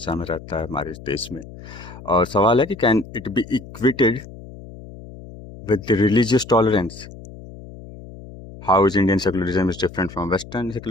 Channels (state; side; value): noise; left; hum, 16 dB below the sound